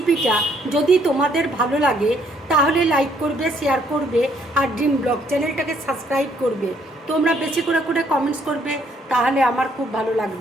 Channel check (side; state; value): both; normal; correlation 0.67